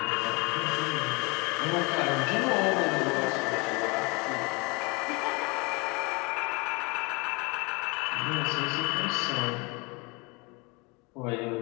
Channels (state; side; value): quieter; right; 27.9 dB